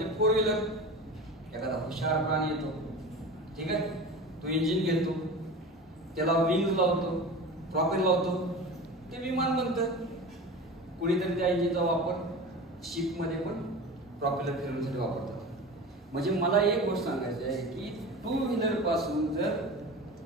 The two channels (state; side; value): normal; both; correlation 0.32